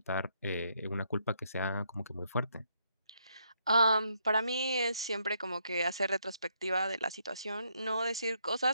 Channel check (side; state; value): both; inverted; correlation -0.75